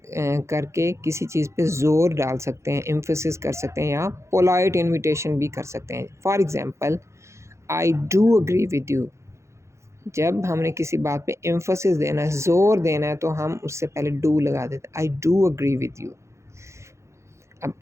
किसी चीज़ पे ज़ोर डाल सकते हैं, एम्फसिस कर सकते हैं या पोलाइट इन्विटेशन भी कर सकते हैं। For example I do agree with you, जब हमने किसी बात पे एम्फसिस देना है, ज़ोर देना है, तो हम उससे पहले डू लगा देते हैं, I do agree with you. अब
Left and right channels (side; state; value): left; late; 0.14 ms